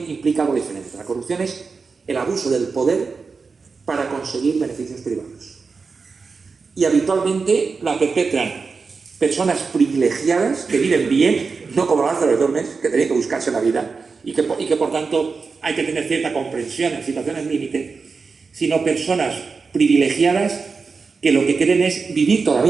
implica algo diferente. La corrupción es el abuso del poder para conseguir beneficios privados. Y habitualmente la perpetran personas privilegiadas que viven bien, no como Lázaro de Tormes, que tenían que buscarse la vida y que por tanto hay que tener cierta comprensión en situaciones límite, sino personas privilegiadas que lo que quieren es vivir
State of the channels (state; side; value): quieter; left; 4.8 dB